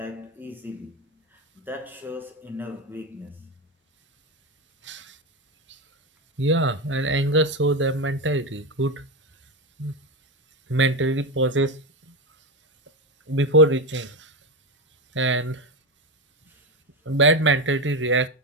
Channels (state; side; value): normal; both; correlation 0.14